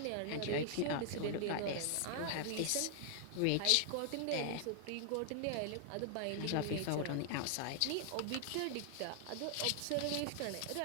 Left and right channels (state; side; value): different; both; correlation 0.00